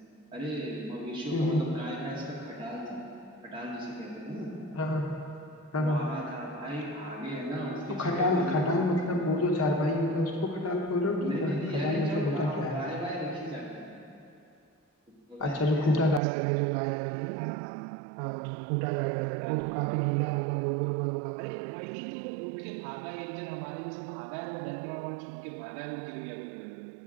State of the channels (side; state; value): left; drops out; at 16.2 s